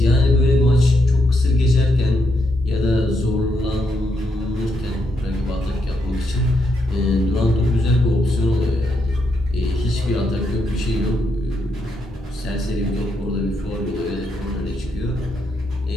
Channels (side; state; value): both; normal; correlation 0.79